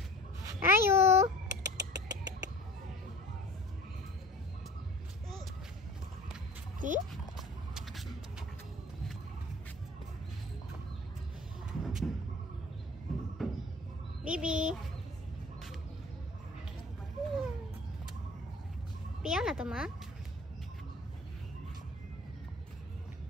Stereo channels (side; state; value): both; normal; correlation 0.43